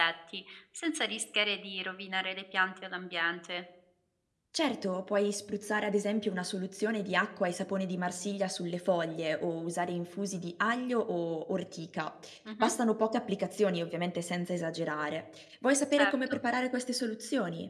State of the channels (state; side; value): identical; both; correlation 1.00